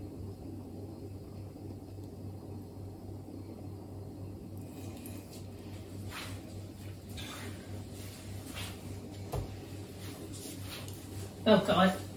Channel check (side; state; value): both; identical; correlation 1.00